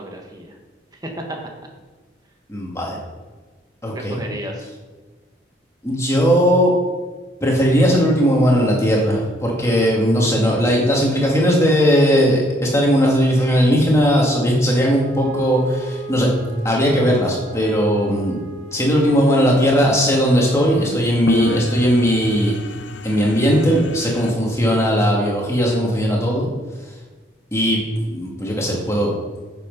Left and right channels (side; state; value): both; normal; correlation 0.67